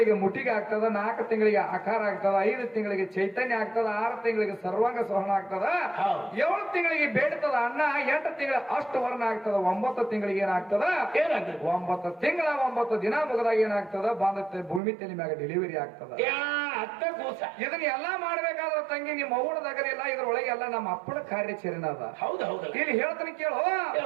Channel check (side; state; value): left; drops out; at 14.8 s